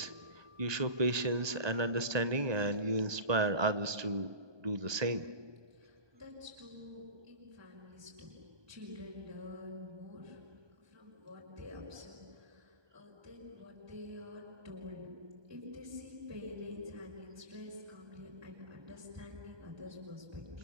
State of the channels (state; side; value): late; left; 1.2 ms